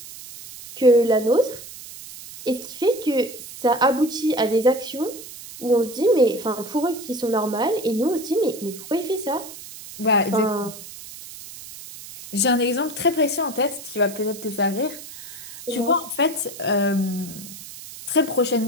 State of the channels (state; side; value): noise; right; hiss, 14 dB below the sound